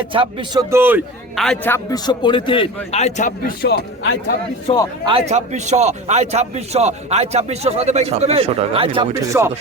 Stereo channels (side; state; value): both; normal; correlation 0.30